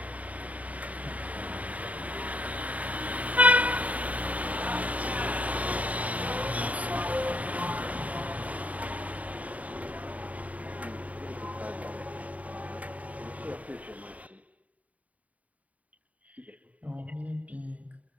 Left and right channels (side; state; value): left; late; 0.070 ms